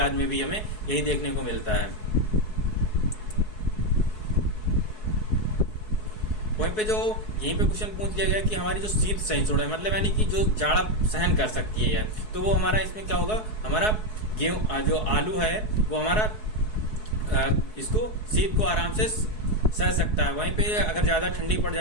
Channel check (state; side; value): late; right; 4.7 ms